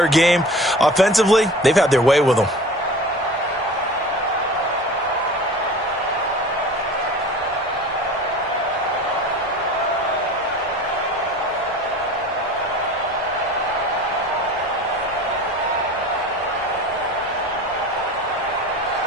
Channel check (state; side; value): normal; both; correlation 0.39